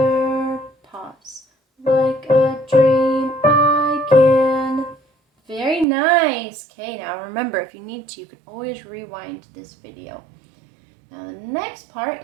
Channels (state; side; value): drops out; left; at 5.9 s